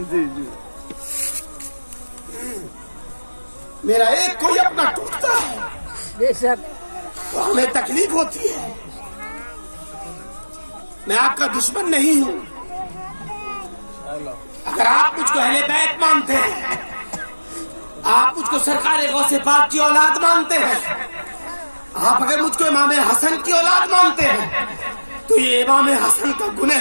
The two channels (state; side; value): inverted; both; correlation -1.00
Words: جی جی میرا ایک کوئی اپنا ٹوٹتا ہے بے شک تو ہمیں تکلیف ہوتی ہے. میں آپ کا دشمن نہیں ہوں. اگر آپ مجھ کو اہل بیت مانتے ہیں, آپ مجھ کو سرکار غوث پاک کی اولاد مانتے ہیں, آپ اگر مجھ کو امام حسن کی اولاد مانتے ہیں, تو یہ امام حسن کا